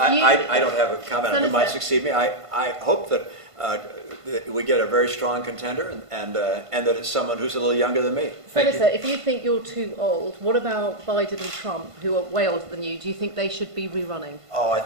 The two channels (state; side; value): late; left; 1.5 ms